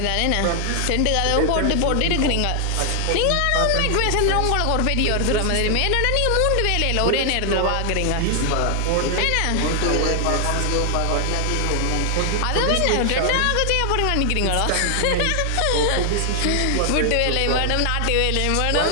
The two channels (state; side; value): different; both; correlation 0.00